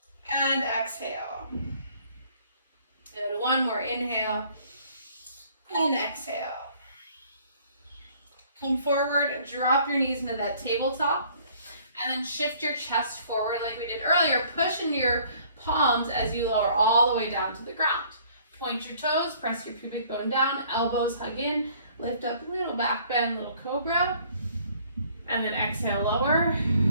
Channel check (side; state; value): both; inverted; correlation -0.57